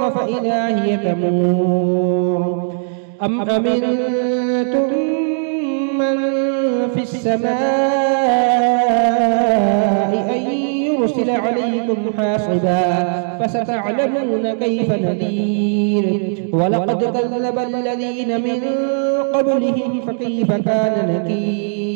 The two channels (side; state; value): left; silent; digital silence